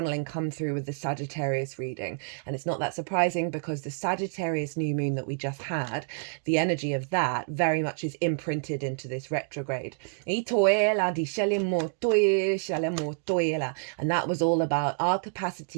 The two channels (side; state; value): left; silent; digital silence